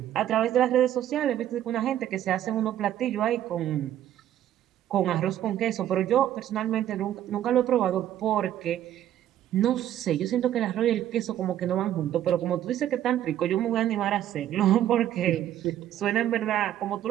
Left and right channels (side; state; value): left; quieter; 11.7 dB